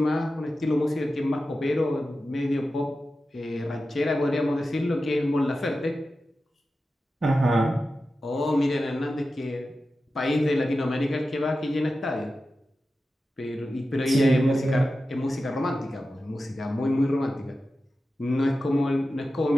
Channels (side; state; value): both; normal; correlation 0.93